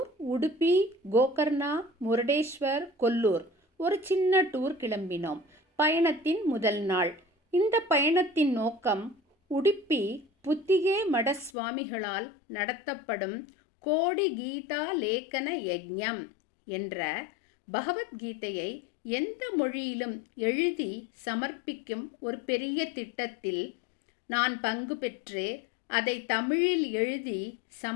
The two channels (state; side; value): drops out; right; at 11.5 s